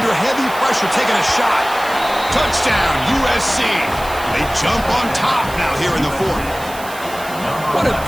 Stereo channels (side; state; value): right; noise; hiss, 15 dB below the sound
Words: heavy pressure, taking a shot. Touchdown, USC. They jump on top now here in the fourth. What a